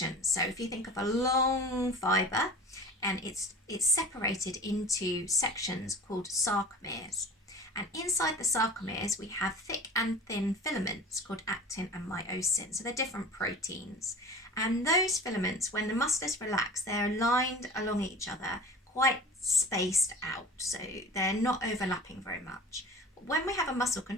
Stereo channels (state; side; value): normal; both; correlation 0.38